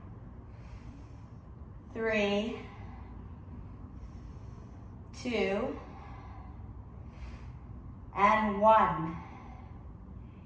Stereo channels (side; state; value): both; identical; correlation 1.00